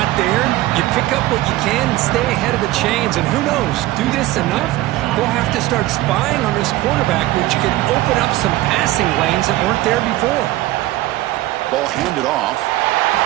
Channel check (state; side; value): quieter; left; 16.9 dB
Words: there. You pick up what you can and stay ahead of the chains. And who knows, do this enough, they'll have to start spying on this quarterback, which could open up some passing lanes that weren't there before. Ball handed off.